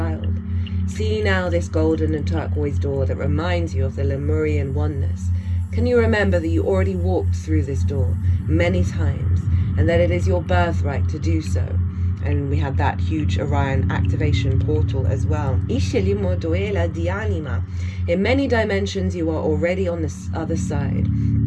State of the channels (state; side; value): identical; both; correlation 1.00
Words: See now this golden and turquoise door that reminds you of the Lemurian oneness. Can you remember that you already walked through this door many times, and that it is your birthright to do so? And we had that huge Orion activation portal as well. In many dimensions, you are already on this other side.